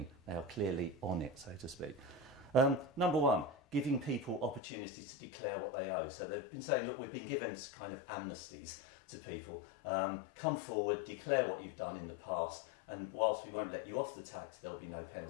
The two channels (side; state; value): right; drops out; at 4.6 s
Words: They are clearly on it, so to speak. Number one, giving people opportunities to declare what they owe. So they've been saying, look, we've been given kind of amnesties to people. Come forward, declare what you've done in the past, and whilst we won't let you off the tax, there'll be no